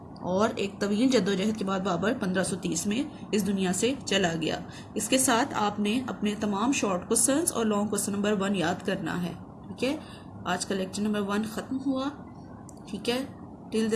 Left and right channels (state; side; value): identical; both; correlation 1.00